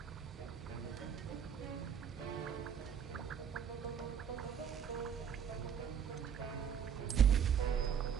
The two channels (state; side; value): quieter; left; 8.1 dB